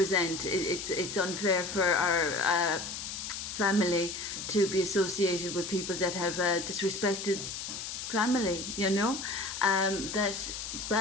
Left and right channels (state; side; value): noise; left; hiss, 6 dB below the sound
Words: It's unfair for our family to be associated with people that have disrespected family, you know, that